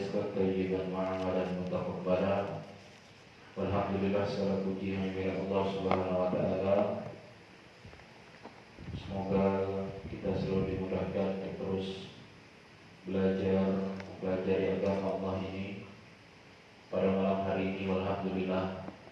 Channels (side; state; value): both; identical; correlation 1.00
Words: thayyiban wa amalan mutaqabbalan. Walhamdulillah, segala puji hanya Allah Subhanahu wa taala. Semoga kita selalu dimudahkan untuk terus belajar agama Allah ini. Pada malam hari ini alhamdulillah